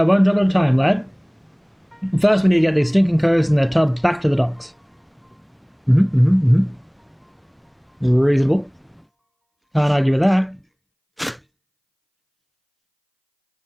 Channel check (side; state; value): both; identical; correlation 1.00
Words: at a time, lad. First, we need to get these stinking coves and their tub back to the docks. Reasonable. Can't argue with that.